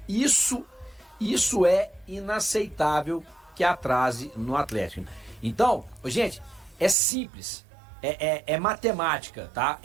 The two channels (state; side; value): drops out; left; at 7.0 s